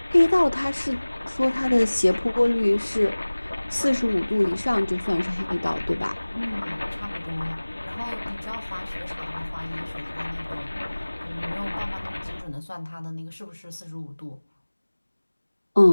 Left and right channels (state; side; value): inverted; both; correlation -1.00